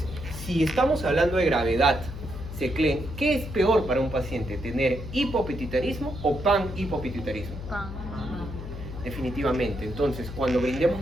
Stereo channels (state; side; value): noise; left; hum, 9 dB below the sound